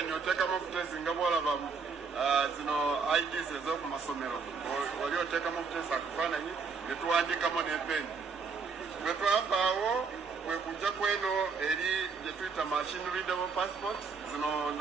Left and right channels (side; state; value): left; quieter; 5.1 dB